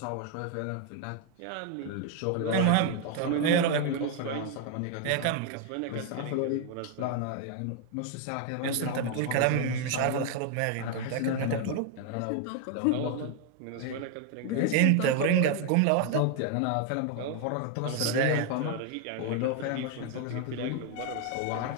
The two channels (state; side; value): different; both; correlation 0.01